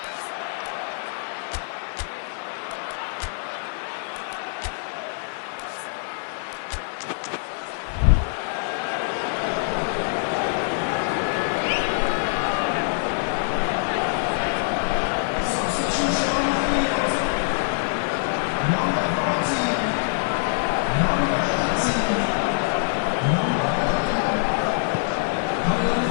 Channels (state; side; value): silent; right; digital silence